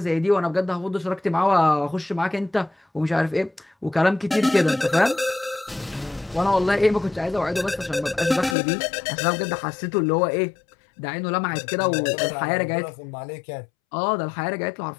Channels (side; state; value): right; drops out; at 8.6 s